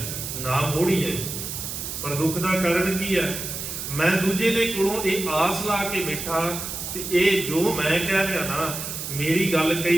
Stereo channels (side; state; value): right; noise; hiss, 6 dB below the sound